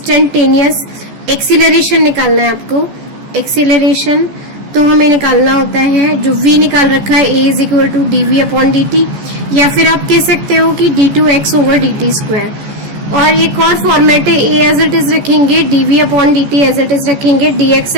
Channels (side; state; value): left; late; 14 ms